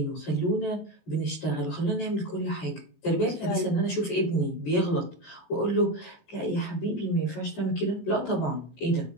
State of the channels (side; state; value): right; late; 18 ms